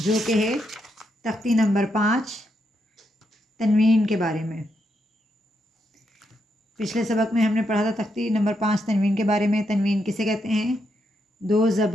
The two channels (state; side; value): normal; both; correlation 0.81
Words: جو کہ ہے تختی نمبر 5 تنوین کے بارے میں۔ پچھلے سبق میں ہم نے پڑھا تھا تختی نمبر 5 تنوین کے بارے میں۔ تنوین کسے کہتے ہیں؟ 2